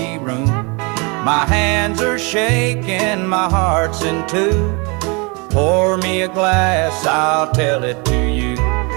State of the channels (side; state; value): left; quieter; 30.2 dB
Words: room. My hands are shaking, my heart's in two. Pour me a glass, I'll tell it to you.